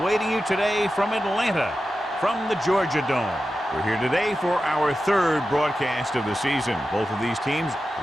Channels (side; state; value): both; normal; correlation 0.92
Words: you today from Atlanta, from the Georgia Dome. We're here today for our third broadcast of the season. Both of these teams